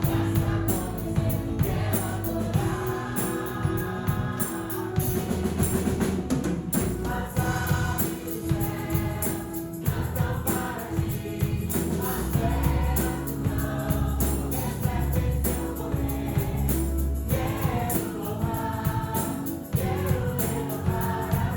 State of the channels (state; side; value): identical; both; correlation 1.00